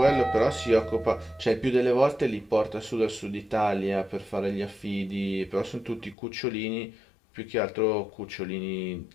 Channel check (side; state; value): right; drops out; at 6.2 s